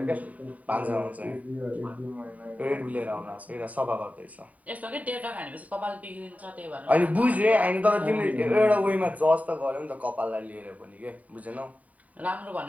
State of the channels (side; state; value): left; late; 0.071 ms